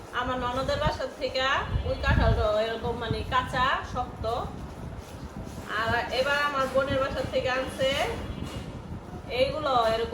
আমার ননদের বাসার থেকে ওই কাঁঠালটা এরকম মানে কাঁচা শক্ত আর এবার আমার বোনের বাসার থেকে আনছে এইগুলো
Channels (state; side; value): identical; both; correlation 1.00